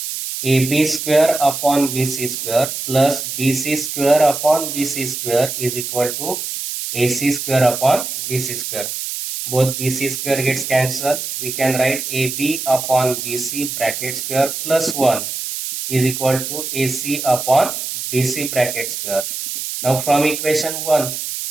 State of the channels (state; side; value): noise; right; hiss, 5 dB below the sound